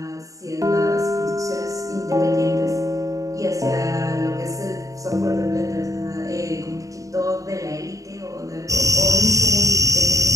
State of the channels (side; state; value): left; late; 0.16 ms